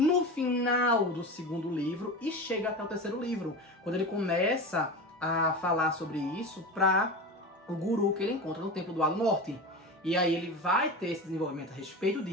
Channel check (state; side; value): normal; both; correlation 0.27